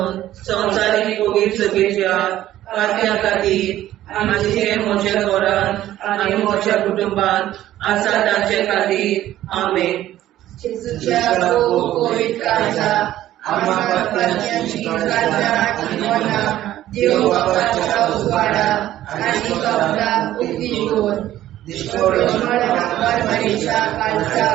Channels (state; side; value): quieter; left; 13.5 dB